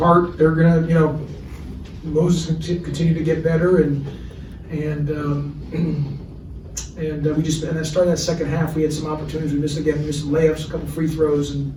They're gonna, you know, Moses continue to get better, and we just, and then starting that second half, we had some opportunities. We missed some layups, a couple free throws, and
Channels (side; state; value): both; identical; correlation 1.00